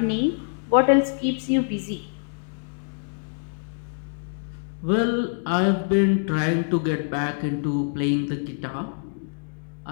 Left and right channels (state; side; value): silent; right; digital silence